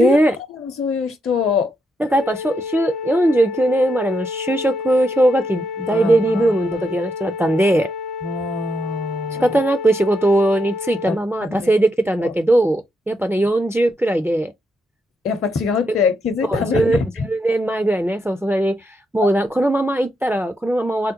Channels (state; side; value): normal; both; correlation 0.80